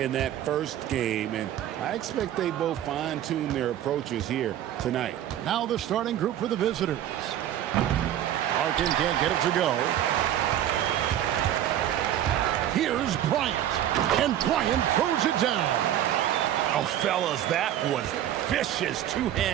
that first game, and I expect they both fine-tune their approaches here tonight. Now the starting group for the visitors. Larkin can't get it to go. Here's Bryant, and Bryant throws it down. Oh, fellas, that was vicious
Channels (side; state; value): left; quieter; 11.5 dB